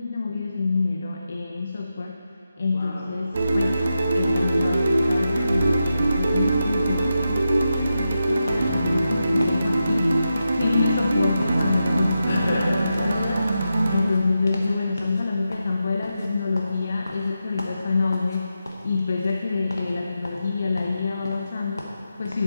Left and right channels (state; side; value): inverted; both; correlation -0.88